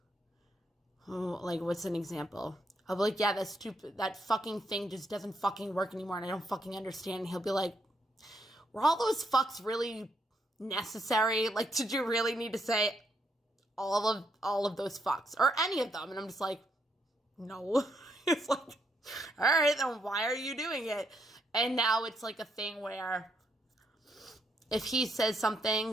what's an example? I'll be yeah, that's stupid. That fucking thing just doesn't fucking work anymore and I don't fucking understand. And he'll be were all those fucks really necessary? Did you really need to say all of those fucks or any of them? And I'm just no. It's all right, then why are you doing it? And now it's a thing where if he says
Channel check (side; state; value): both; normal; correlation 0.76